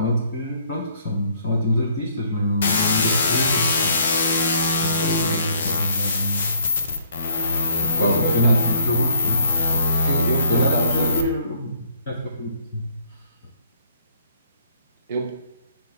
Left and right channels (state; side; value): inverted; both; correlation -0.62